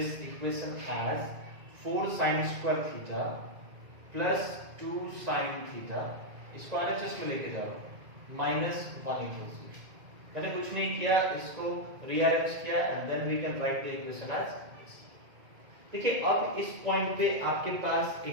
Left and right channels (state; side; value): late; left; 2.1 ms